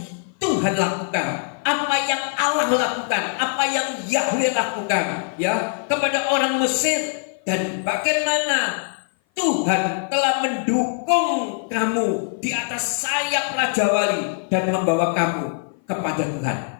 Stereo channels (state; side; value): silent; right; 56 dB below the other